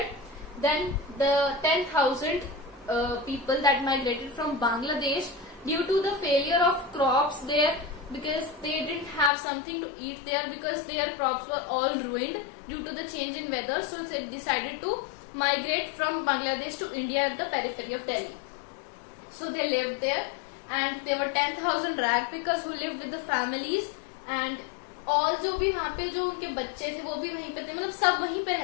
then the 10,000 people that migrated from Bangladesh due to the failure of crops there, because they didn't have something to eat there, because their crops were all ruined due to the change in weather. So they decided to migrate from Bangladesh to India at the periphery of Delhi. So they lived there, and there were 10,000 ragpickers who lived with the families, and all जो भी वहाँ पे जो उनके बच्चे थे वो भी वहीं पे थे, मतलब सब वहीं पे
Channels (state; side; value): drops out; right; at 9.3 s